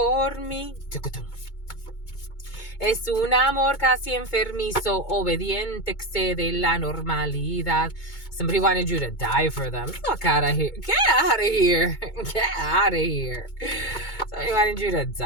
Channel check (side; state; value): right; late; 2.2 ms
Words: mí. Es un amor casi enfermizo, obediente, excede la normalidad. Somebody wanted you to die for them. Fuck out of here. Get out of here. Get out of here. Somebody wanted you to